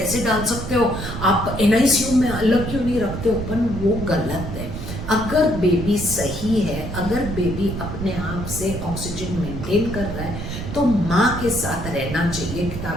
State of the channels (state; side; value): noise; right; rumble, 7 dB below the sound